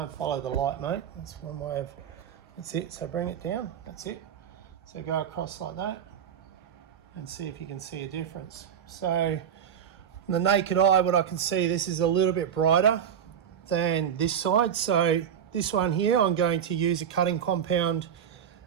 and follow the light, mate. That's one way of, that's it. So bring it down, that's it. So go across like that and see if you can see a difference. So from the naked eye, what I can see, this is a little bit brighter than this side. So this one here, I'm going to use a cutting compound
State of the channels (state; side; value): quieter; left; 8.7 dB